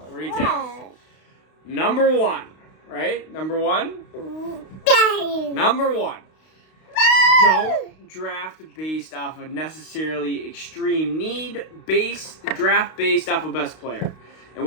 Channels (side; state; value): right; late; 32 ms